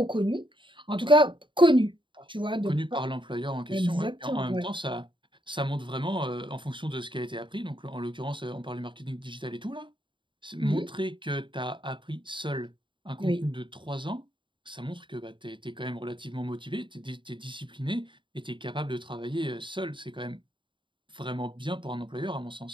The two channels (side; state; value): left; late; 0.24 ms